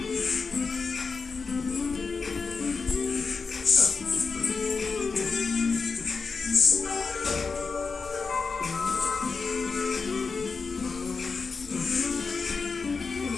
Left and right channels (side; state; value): right; quieter; 4.8 dB